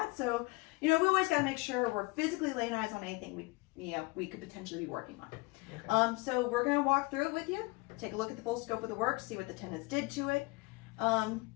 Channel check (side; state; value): right; quieter; 25.6 dB